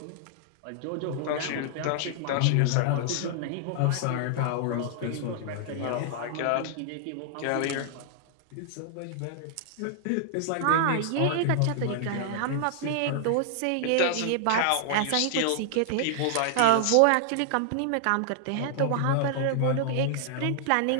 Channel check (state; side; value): different; both; correlation -0.01